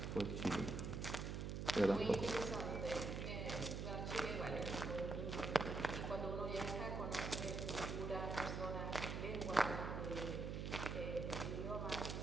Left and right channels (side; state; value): right; noise; hum, 3 dB below the sound